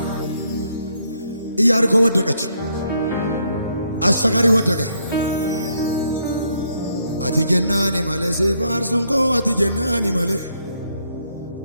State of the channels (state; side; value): inverted; both; correlation -0.73